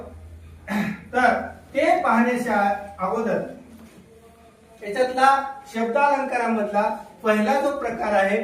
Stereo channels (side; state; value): both; identical; correlation 1.00